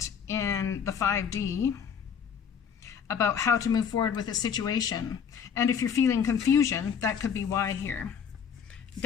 in the 5D about how to move forward with a situation. And if you're feeling confusion, that could be why here.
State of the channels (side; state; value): right; quieter; 7.3 dB